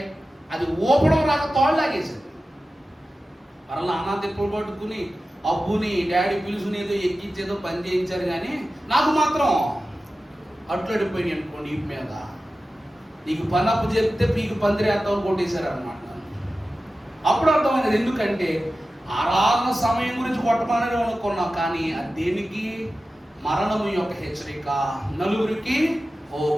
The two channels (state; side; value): normal; both; correlation 0.94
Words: అది ఊపడం రాక తోడు లాగేశాడు. మరలా నాన్న తిప్పులు పట్టుకుని అబ్బుని డాడీ పిలుచుని ఏదో ఎక్కించేదో పని చేయించారు, కానీ నాకు మాత్రం అట్లడిపోయినాయి అనుకోండి ఈ మీద. నీకు పని అప్పు చెప్తే పీకి పందిరేస్తామని కొట్టేశారు అనమాట. అప్పుడు అర్థమైనది, ఎందుకంటే ఆరాధన సమయం గురించి కొట్టమని అనుకున్నాం, కానీ అది దేనికి? మరణము యొక్క హెచ్చరిక. నలుగురికి ఓ